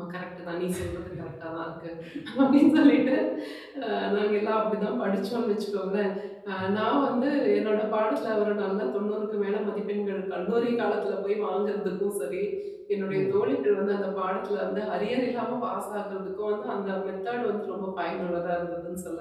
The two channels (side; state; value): both; identical; correlation 1.00